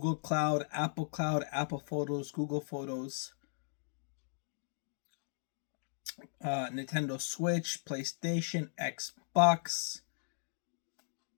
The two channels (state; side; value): silent; right; digital silence